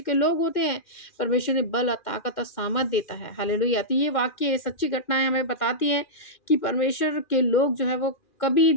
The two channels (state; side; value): late; right; 2.1 ms